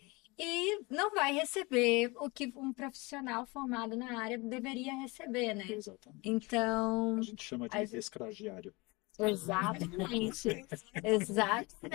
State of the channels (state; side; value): quieter; right; 25.3 dB